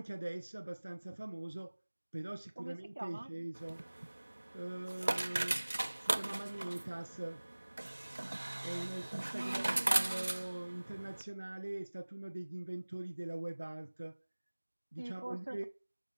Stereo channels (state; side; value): inverted; both; correlation -1.00